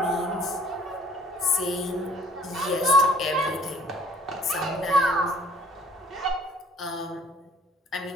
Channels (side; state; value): both; normal; correlation 0.56